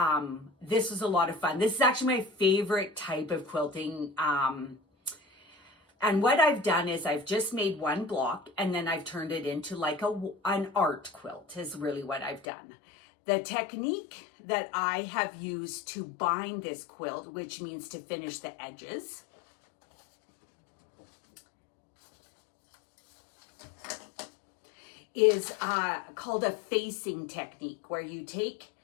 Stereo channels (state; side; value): drops out; right; at 12.5 s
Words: This was a lot of fun. This is actually my favorite type of quilting. And what I've done is I've just made one block, and then I've turned it into like an art quilt is really what I've done. The technique that I have used to bind this quilt, which means to finish the edges, is called a facing technique, where you take